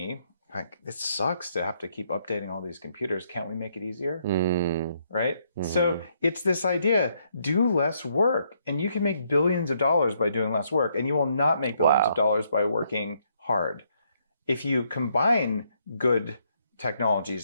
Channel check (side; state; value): both; inverted; correlation -0.73